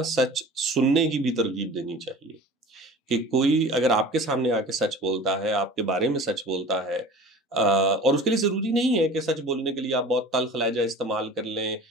सच सुनने की भी तरगीब देनी चाहिए। कि कोई अगर आपके सामने आके सच बोलता है, आपके बारे में सच बोलता है, और उसके लिए ज़रूरी नहीं है कि सच बोलने के लिए आप बहुत तल्ख़ लहज़ा इस्तेमाल कर लें,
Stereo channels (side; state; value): both; normal; correlation 0.41